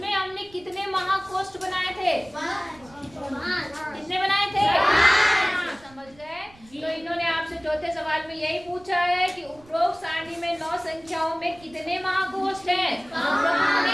हमने कितने महाकोष्ठ बनाए थे? कितने बनाए थे? समझ गए। तो इन्होंने आपसे चौथे सवाल में यही पूछा है कि उपरोक्त सारणी में 9 संख्याओं में कितने महाकोष्ठ हैं? 5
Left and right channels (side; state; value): right; noise; rumble, 26 dB below the sound